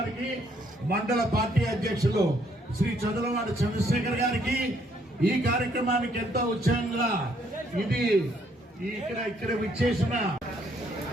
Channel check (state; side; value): normal; both; correlation 0.68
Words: మండల పార్టీ అధ్యక్షులు శ్రీ చంద్రవాడి చంద్రశేఖర్ గారికి, ఈ కార్యక్రమానికి ఎంతో ఉత్సాహంగా ఇది ఇక్కడ విచ్చేసిన